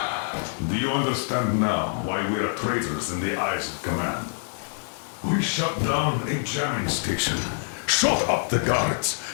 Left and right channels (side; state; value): right; silent; digital silence